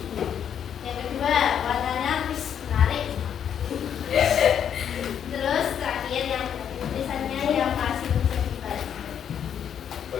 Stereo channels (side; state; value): right; quieter; 8.7 dB